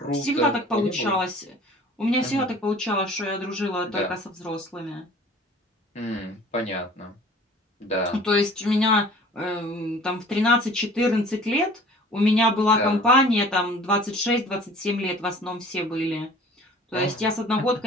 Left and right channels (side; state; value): both; normal; correlation 0.47